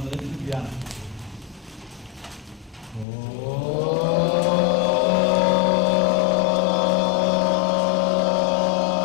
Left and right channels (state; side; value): drops out; right; at 3.1 s